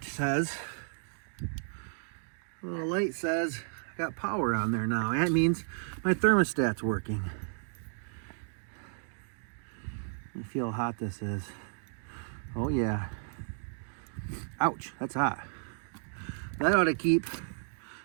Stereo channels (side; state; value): left; silent; digital silence